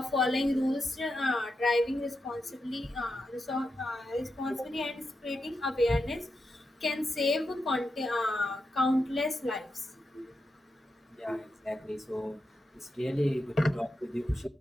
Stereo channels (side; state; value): both; normal; correlation 0.87